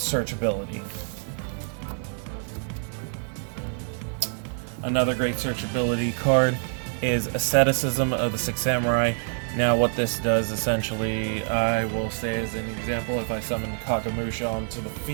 Another great searchability card is Asceticism of the 6 Samurai. Now what this does essentially, I will say as an example, if I summon Kagamusha onto the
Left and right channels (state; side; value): silent; left; digital silence